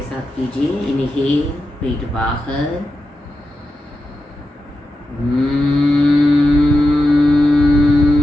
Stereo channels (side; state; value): both; normal; correlation 0.89